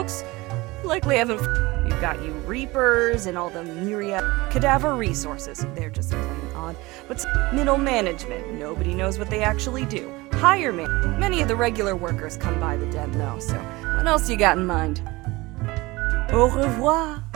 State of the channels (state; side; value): quieter; left; 21.7 dB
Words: Likely haven't. You've got you reapers and all the myriad cadaver resources. They're just plain odd. But middle management, nobody knows what they actually do. Higher man, many of the regular workers come by the den though, so what else you got in mind? Au revoir,